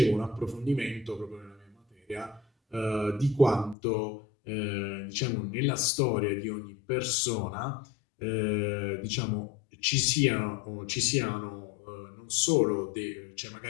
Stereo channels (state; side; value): drops out; right; at 3.8 s